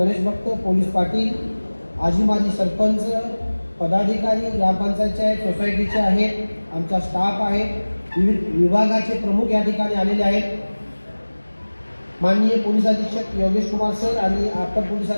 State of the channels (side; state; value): both; inverted; correlation -1.00